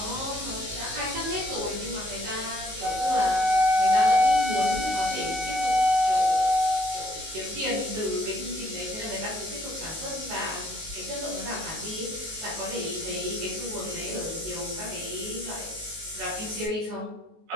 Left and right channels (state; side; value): late; left; 19 ms